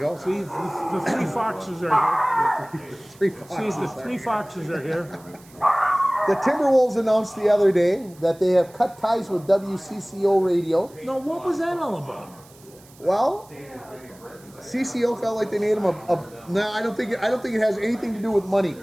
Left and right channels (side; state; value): right; noise; hiss, 25 dB below the sound